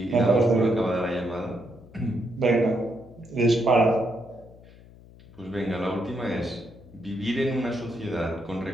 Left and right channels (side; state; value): left; noise; hum, 22 dB below the sound